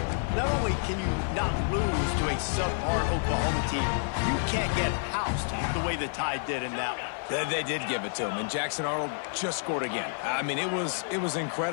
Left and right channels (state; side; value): silent; right; 58 dB below the other